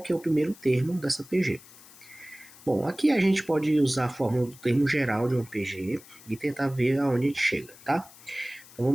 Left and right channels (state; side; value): noise; left; hiss, 21 dB below the sound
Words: é o primeiro termo dessa PG. Bom, aqui a gente pode usar a fórmula do termo geral de uma PG e tentar ver aonde a gente chega, tá? Então